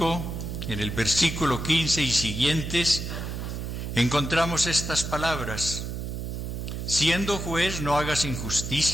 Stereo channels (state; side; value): noise; right; hum, 5 dB below the sound